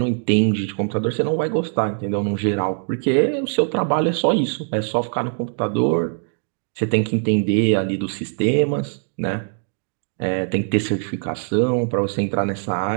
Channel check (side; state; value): left; silent; digital silence